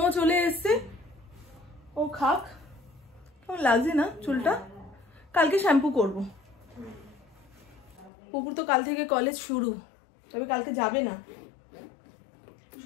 চলে এসছে, ও খাক। কেমন লাগছে না চুলটা? কালকে শ্যাম্পু করব। পুপুর তো কাল থেকে কলেজ শুরু, তবে কালকে যাবে না।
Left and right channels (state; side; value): drops out; right; at 8.1 s